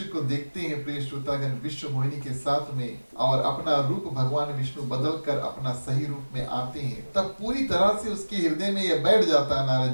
को देखते हैं प्रिय श्रोतागण विश्व मोहिनी के साथ में, और अपना रूप भगवान विष्णु बदल कर अपना सही रूप में आते हैं, तब पूरी तरह से उसके हृदय में यह बैठ जाता है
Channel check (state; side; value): inverted; both; correlation -1.00